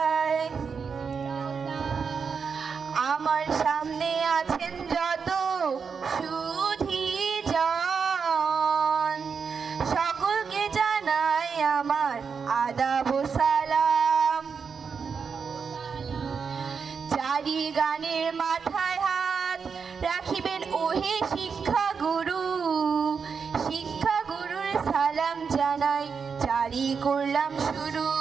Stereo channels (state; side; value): quieter; left; 5.9 dB